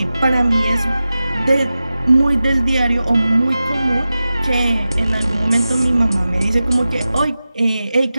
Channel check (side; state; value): both; inverted; correlation -0.94